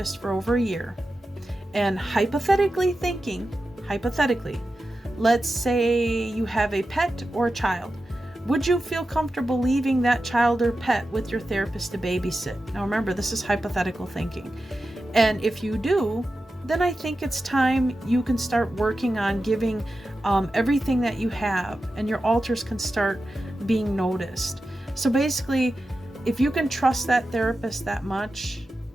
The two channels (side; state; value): both; normal; correlation 0.92